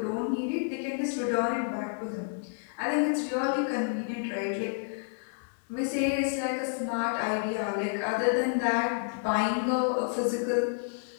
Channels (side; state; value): right; silent; digital silence